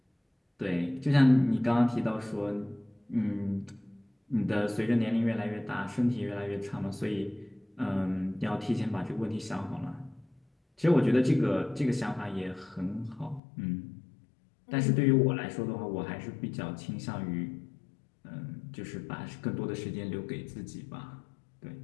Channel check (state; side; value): drops out; right; at 13.4 s